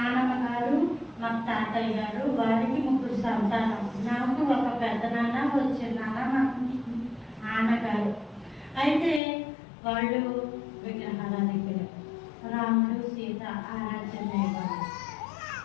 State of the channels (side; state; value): right; drops out; at 9.2 s